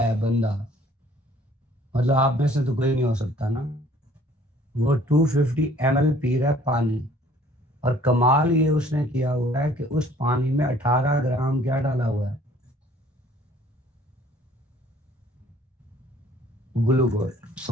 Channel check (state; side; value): normal; both; correlation 0.56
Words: बंदा मतलब आप में से तो कोई नहीं हो सकता ना। वो 250 ml पी रहा है पानी, और कमाल ये उसने किया हुआ है कि उस पानी में 18 ग्राम क्या डाला हुआ है, ग्लूकोज।